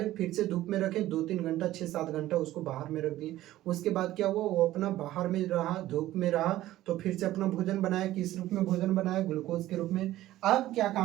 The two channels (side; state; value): left; quieter; 14.9 dB